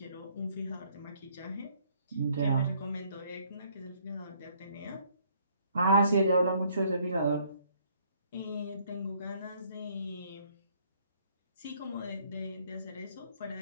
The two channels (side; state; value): both; inverted; correlation -0.64